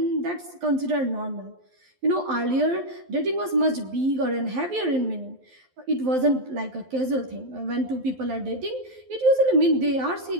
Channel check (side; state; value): left; late; 11 ms